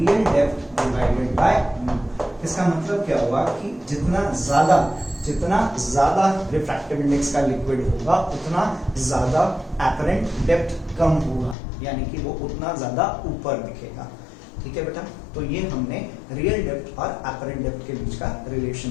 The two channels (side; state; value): right; drops out; at 11.6 s